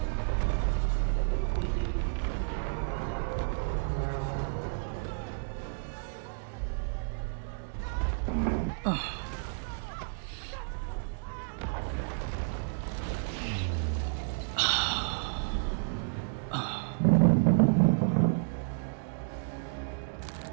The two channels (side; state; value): left; silent; digital silence